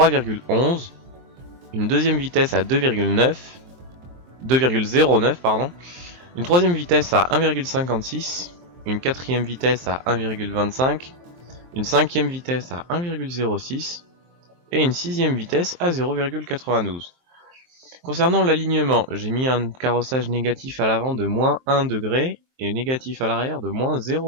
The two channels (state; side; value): late; left; 23 ms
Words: une deuxième vitesse à 2,09 pardon, une troisième vitesse à 1,56, une quatrième vitesse à 1,25, une cinquième vitesse à 1,06 et une sixième vitesse à 0,92. Concernant l'alignement, j'ai mis un carrossage négatif à l'avant de moins 1 degré et négatif à l'arrière de moins